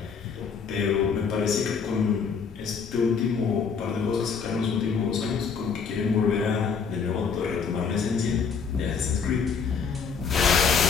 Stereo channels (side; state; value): right; quieter; 5.9 dB